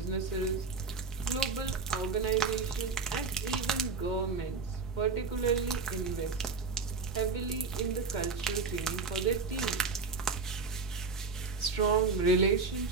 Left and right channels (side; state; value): left; quieter; 4.6 dB